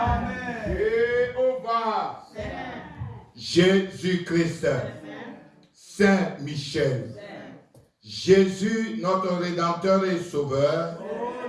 Jéhovah, Jésus-Christ, Saint Michel, Jésus, notre Rédempteur et Sauveur,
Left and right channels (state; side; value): identical; both; correlation 1.00